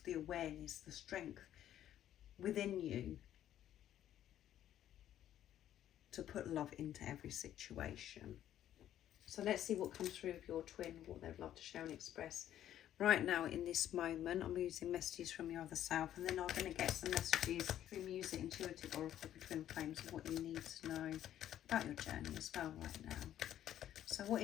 the awareness, the strength within you to put love into every situation. So let's see what comes through of your twin, what they'd love to share and express. Right now in this moment, I'm using messages from your other self, and then I'm going to get some messages through music, intuitive oracle for twin flames of what you need to know about your journey as well right now. So what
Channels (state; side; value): quieter; right; 11.5 dB